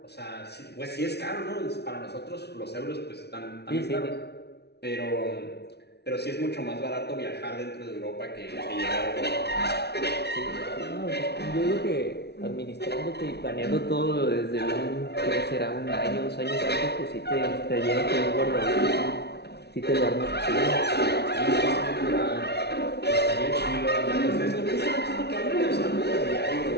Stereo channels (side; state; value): right; late; 0.49 ms